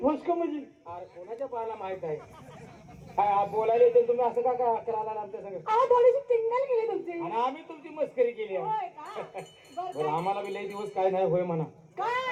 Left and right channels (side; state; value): both; identical; correlation 1.00